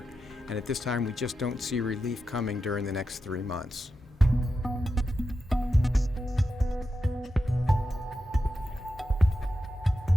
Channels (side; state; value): both; normal; correlation 0.89